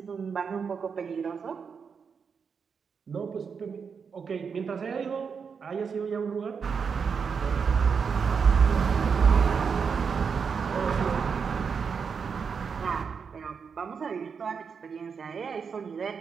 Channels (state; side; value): quieter; left; 6.0 dB